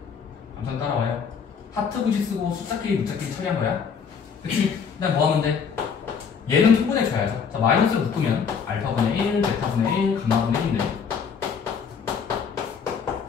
감상 따라와요. 하트 공식 쓰고 숫자끼리 문자끼리 처리한 거야. 그치? 그냥 뭐 하면 돼? 얘는 통분해줘야죠. 자, 마이너스를 묶으면 알파분의 1, 베타분의 1, 감마분의 1인데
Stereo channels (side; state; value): right; quieter; 6.4 dB